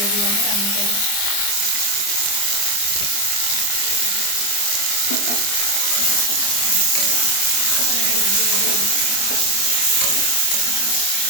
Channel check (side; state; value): right; late; 25 ms